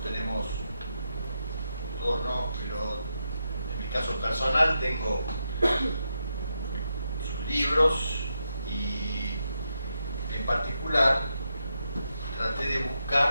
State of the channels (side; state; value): both; inverted; correlation -0.84